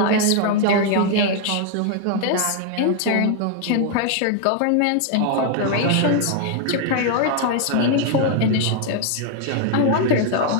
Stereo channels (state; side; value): different; both; correlation 0.00